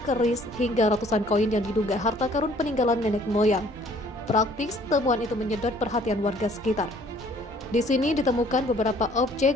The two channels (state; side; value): normal; both; correlation 0.57